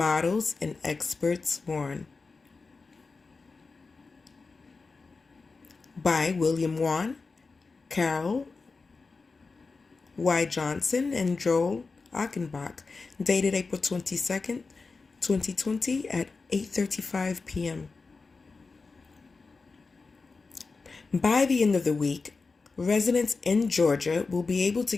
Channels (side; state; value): right; quieter; 4.2 dB